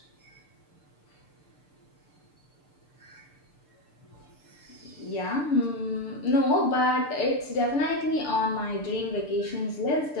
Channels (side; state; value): right; late; 6.8 ms